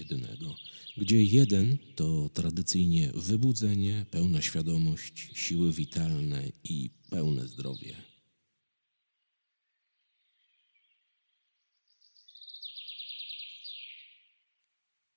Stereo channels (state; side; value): inverted; both; correlation -1.00